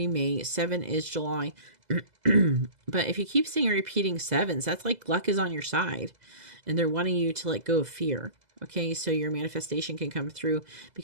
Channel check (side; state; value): left; late; 2.0 ms